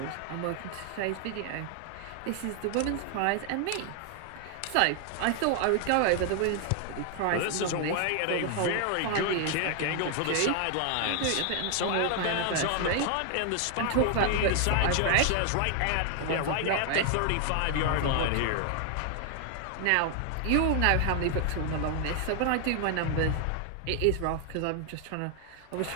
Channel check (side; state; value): both; different; correlation 0.00